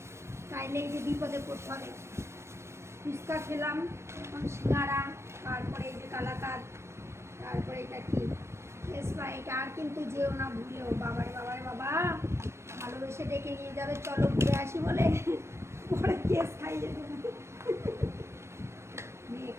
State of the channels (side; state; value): left; late; 0.13 ms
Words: তাইলে এই যে বিপদে পড়তে হবে। ফুচকা খেলাম, এখন সিঙ্গারা, তারপরে এই যে কালাকাঁদ, তারপরে এটা কি স্প্রাইট। আর কিন্তু যেও না ভুলেও, বাবারে বাবারে বাবা, ভালোবেসে ডেকে নিয়ে যাবে চলো ঘুরে আসি বলে, পরে কেস খাইয়ে দেবো। মেয়ে